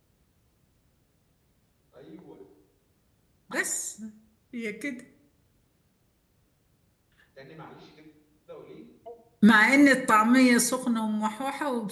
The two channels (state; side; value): identical; both; correlation 1.00